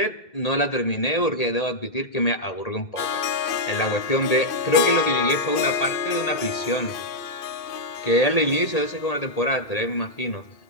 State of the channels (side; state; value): right; late; 1.8 ms